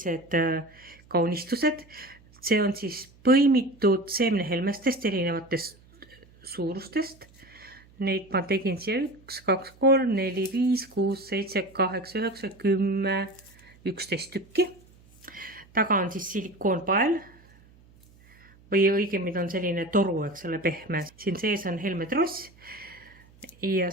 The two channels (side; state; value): right; noise; hum, 27 dB below the sound